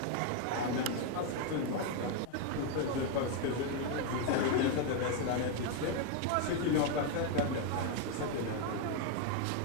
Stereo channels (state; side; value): different; both; correlation 0.01